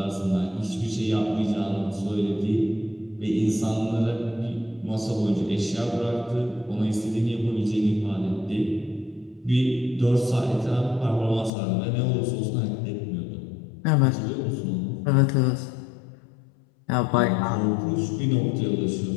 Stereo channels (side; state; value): right; drops out; at 11.5 s